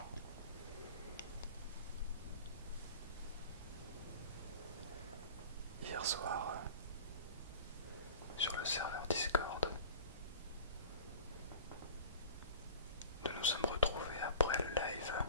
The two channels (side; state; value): both; inverted; correlation -0.39